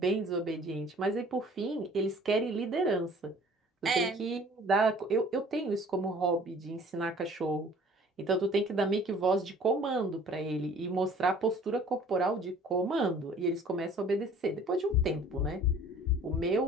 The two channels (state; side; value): normal; both; correlation 0.51